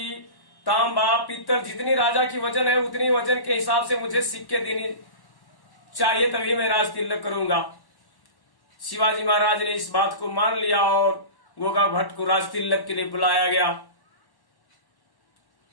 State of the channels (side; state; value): right; late; 1.1 ms